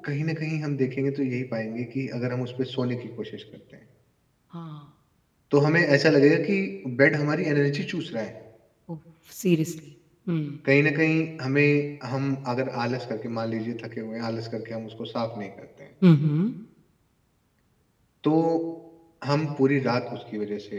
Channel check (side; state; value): both; identical; correlation 1.00